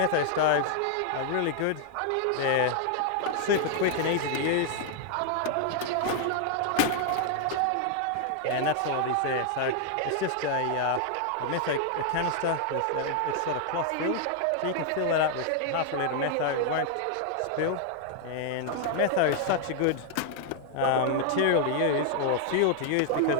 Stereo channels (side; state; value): both; different; correlation 0.00